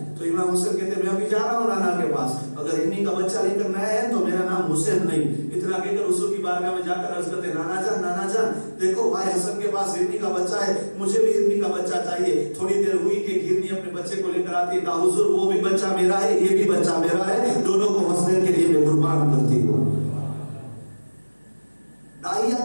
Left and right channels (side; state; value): both; inverted; correlation -1.00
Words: تو امام حسین کہتے میں ابھی جا رہا ہوں نانا کے پاس، اگر ہرنی کا بچہ لے کر نہ آیا تو میرا نام حسین نہیں۔ اتنا کہہ کر حضور کی بارگاہ میں جا کر عرض کرتے نانا جان دیکھو بھائی حسن کے پاس ہرنی کا بچہ ہے، مجھے بھی ہرنی کا بچہ چاہیے۔ تھوڑی دیر ہوئی کہ ہرنی اپنے بچے کو لے کر آتی ہے، کہا حضور وہ بھی بچہ میرا ہے، یہ بھی بچہ میرا ہے، دونوں کو حسین کے لیے میں قربان کرتی ہوں۔ داہیہ